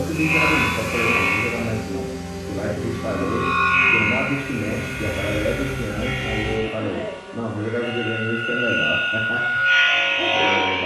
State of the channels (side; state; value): both; identical; correlation 1.00